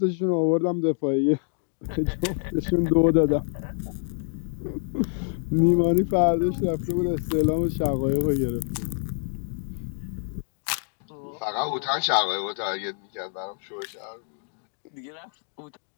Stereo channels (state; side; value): silent; right; digital silence